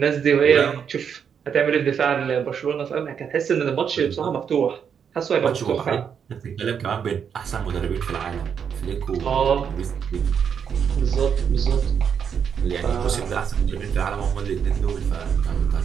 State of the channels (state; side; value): quieter; left; 7.4 dB